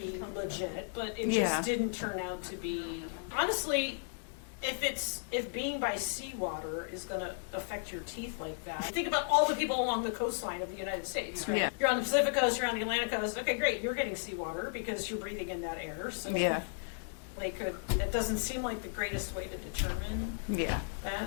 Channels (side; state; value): right; silent; digital silence